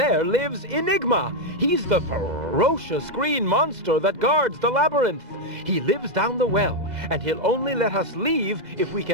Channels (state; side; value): late; left; 2.0 ms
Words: lives Enigma. He's the ferocious green monster that guards the labyrinth. He lives down the well, and he'll only let us leave if we